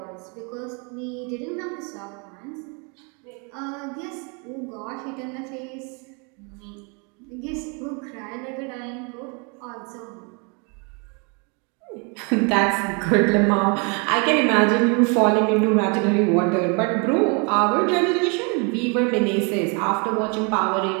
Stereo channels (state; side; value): quieter; left; 34.1 dB